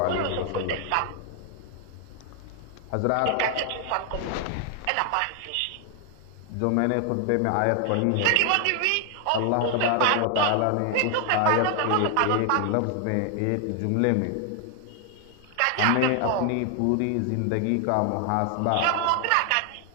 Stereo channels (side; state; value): both; different; correlation 0.00